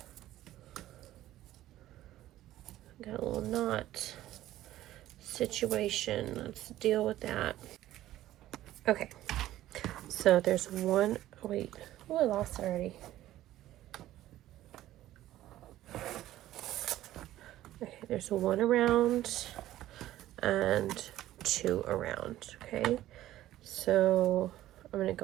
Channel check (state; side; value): quieter; left; 14.3 dB